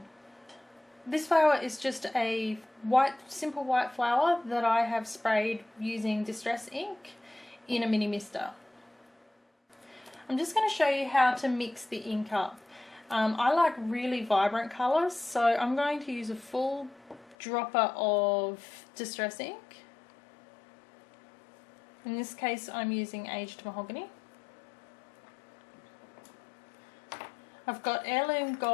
This flower is just a simple white flower that I have sprayed using Distress ink in a mini mister. I'm just going to show you how to mix the ink up. I like really vibrant colours, so I'm going to use a full dropper of Distress ink. In this case I'm using Aged Mahogany. I've got Heirloom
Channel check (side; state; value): right; drops out; at 17.4 s